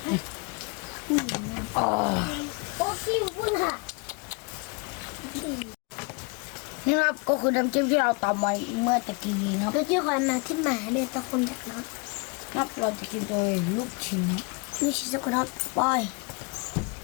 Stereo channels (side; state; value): right; quieter; 30.9 dB